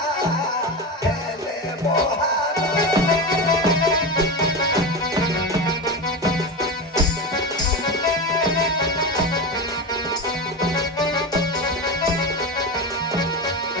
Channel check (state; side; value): normal; both; correlation 0.20